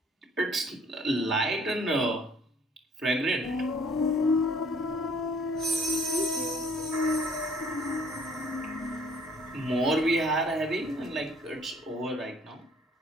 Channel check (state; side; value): normal; both; correlation 0.58